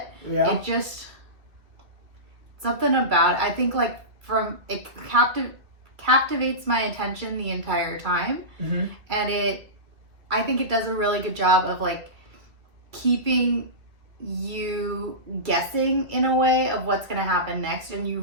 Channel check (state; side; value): late; left; 2.4 ms